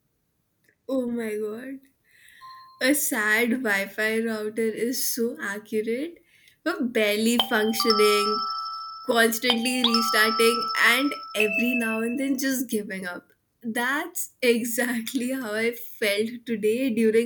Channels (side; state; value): both; identical; correlation 1.00